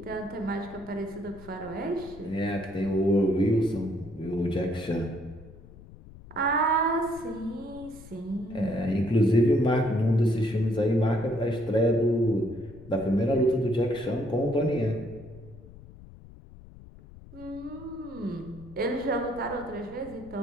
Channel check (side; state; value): left; noise; rumble, 19 dB below the sound